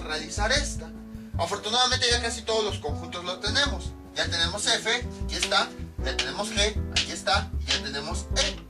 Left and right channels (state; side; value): identical; both; correlation 1.00